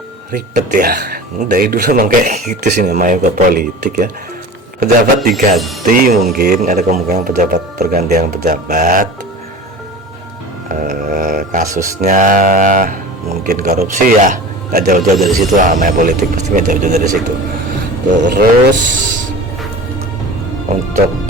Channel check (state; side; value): normal; both; correlation 0.36